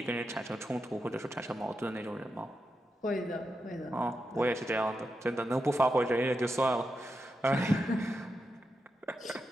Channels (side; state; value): both; normal; correlation 0.87